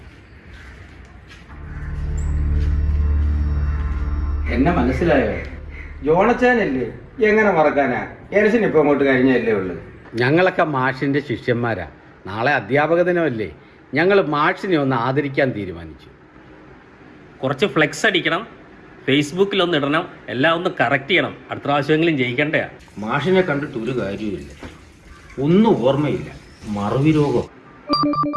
എന്നെ മനസ്സിലായോ? ജോണച്ചാനല്ലേ? എങ്ങനെ മറക്കാനാ? എനസിന് ഇപ്പൊ അങ്ങോട്ട് കഴിഞ്ഞല്ലേ ഉള്ളു. ഞങ്ങളൊക്കെ മാഷിന്റെ ശിഷ്യന്മാരാ. നാളെ അധ്യാപക ദിനമല്ലേ, ഞങ്ങൾ മാഷിനെ ഒന്ന് ആദരിക്കാൻ തീരുമാനിച്ചു. കുറച്ച് ഫ്ലെക്സ് അടിക്കണം, ഫേസ്ബുക്കിൽ ഒന്ന് ഇടണം, എല്ലാം ഒന്ന് കറക്റ്റ് ചെയ്യണം. അടുത്ത പ്രാവശ്യമെങ്കിലും ജയിക്കണ്ടേ. മാഷിനെ കണ്ടിട്ട് ഒരു കാര്യമില്ല, ഒന്നും ഓർമ്മയില്ല, മറവി രോഗം.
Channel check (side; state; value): both; identical; correlation 1.00